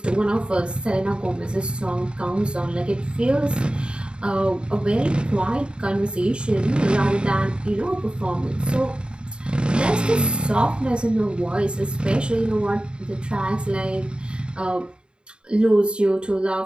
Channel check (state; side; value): late; left; 0.052 ms